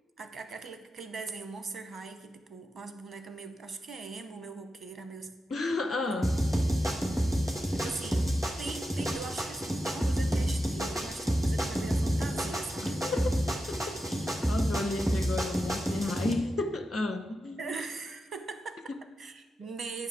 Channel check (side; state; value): both; normal; correlation 0.89